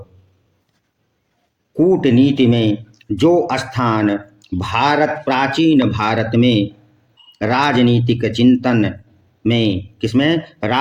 कूटनीति में जो स्थान प्राचीन भारत में राजनीतिक चिंतन में किसमें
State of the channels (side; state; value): both; identical; correlation 1.00